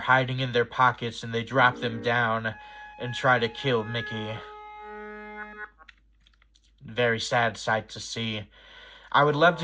in their pockets, and they drop them down and try to kill Mickey. Very sad sight to see. I would love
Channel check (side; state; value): both; identical; correlation 1.00